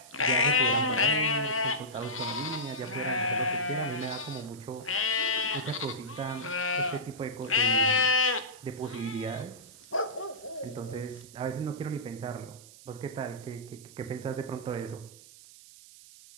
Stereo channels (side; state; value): right; noise; hiss, 20 dB below the sound